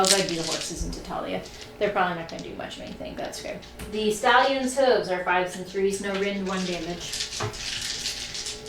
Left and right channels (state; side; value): identical; both; correlation 1.00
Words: go do the horses into Talia. They're probably not going to do much of anything, that's okay. The stallion's hooves are 5s and 3s, no rend 1 damage.